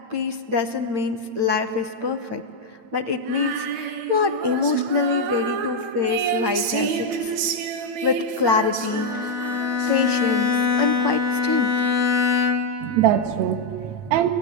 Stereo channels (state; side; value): late; left; 8.9 ms